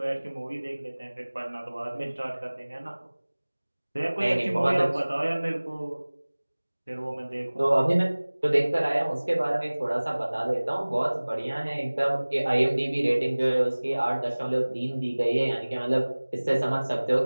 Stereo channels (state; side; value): inverted; both; correlation -1.00